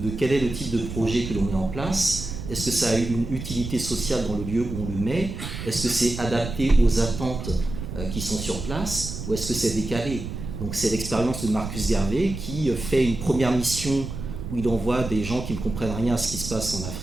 quel est le type de projet que l'on met en place. Est-ce que ça a une utilité sociale dans le lieu où on le met? Est-ce que c'est adapté aux attentes qui sont sur place, ou est-ce que c'est décalé? Donc c'est l'expérience de Marcus Garvey qui fait une première mission où il envoie des gens qui ne comprennent rien à ce qui se passe en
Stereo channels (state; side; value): noise; right; rumble, 7 dB below the sound